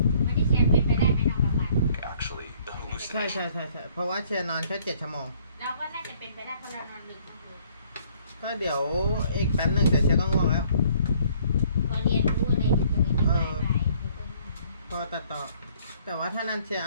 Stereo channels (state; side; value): inverted; both; correlation -0.61